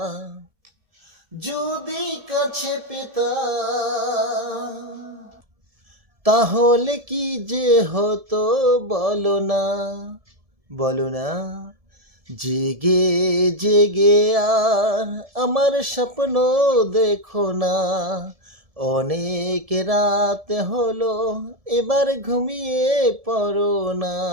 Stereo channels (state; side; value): late; left; 1.7 ms